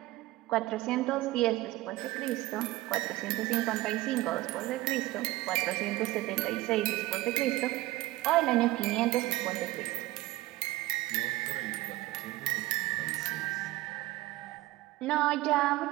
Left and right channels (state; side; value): quieter; left; 18.3 dB